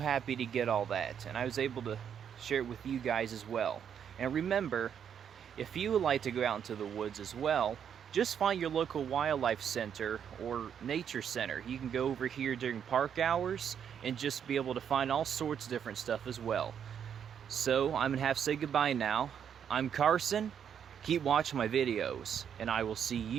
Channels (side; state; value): left; quieter; 8.2 dB